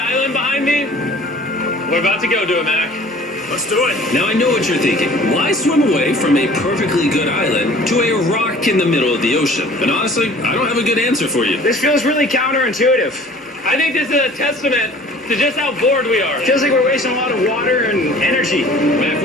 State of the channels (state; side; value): normal; both; correlation 0.49